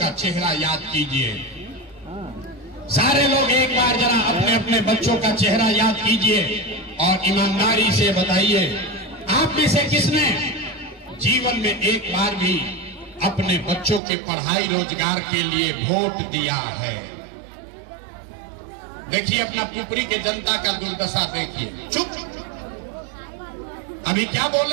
चेहरा याद कीजिए। सारे लोग एक बार जरा अपने अपने बच्चों का चेहरा याद कीजिए और ईमानदारी से बताइए, आप में से किसने जीवन में एक बार भी अपने बच्चों के पढ़ाई रोजगार के लिए वोट दिया है? देखिए अपना पुपरी के जनता का दुर्दशा देखिए। चुप, अभी क्या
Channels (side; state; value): left; drops out; at 14.0 s